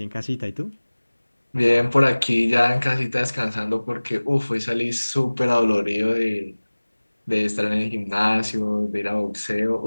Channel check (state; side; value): inverted; both; correlation -1.00